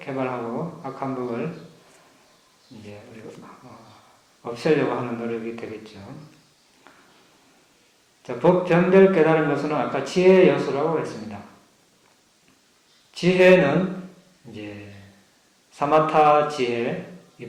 악한 법을 이제 우리가 없애려고 하는 노력이 되겠죠. 자, 법 변별 깨달음 요소는 아까 지혜 요소라고 했습니다. 지혜는 이제 사마타 지혜,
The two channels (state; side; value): identical; both; correlation 1.00